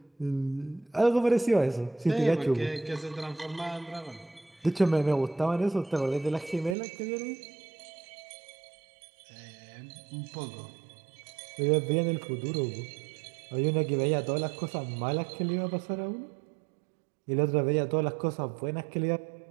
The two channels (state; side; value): drops out; left; at 6.8 s